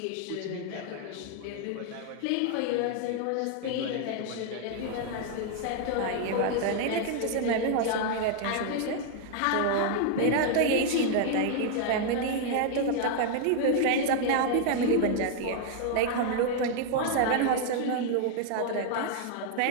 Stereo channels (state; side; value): different; both; correlation 0.00